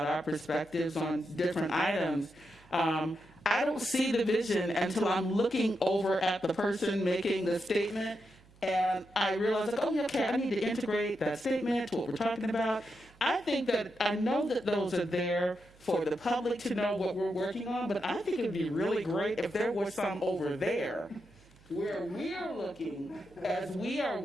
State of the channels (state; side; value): noise; right; hum, 27 dB below the sound